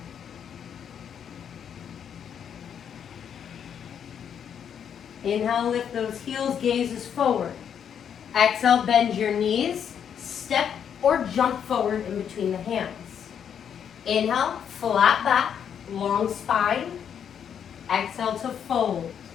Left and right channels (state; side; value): quieter; right; 8.3 dB